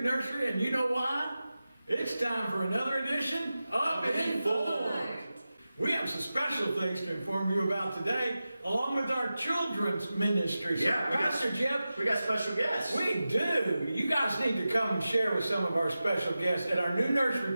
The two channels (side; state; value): both; inverted; correlation -0.94